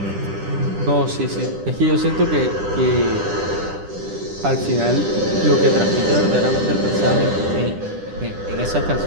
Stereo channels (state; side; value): late; left; 10 ms